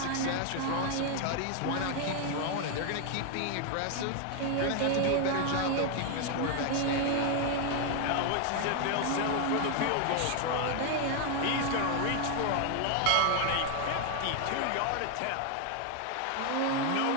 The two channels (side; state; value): both; different; correlation 0.01